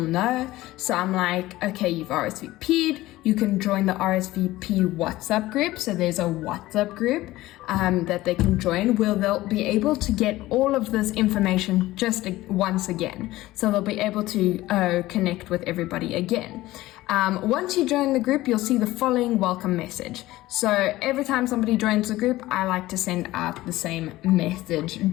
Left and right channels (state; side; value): quieter; right; 17.2 dB